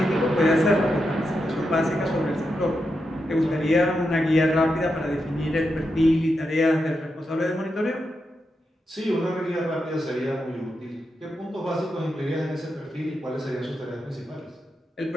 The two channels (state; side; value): normal; both; correlation 0.86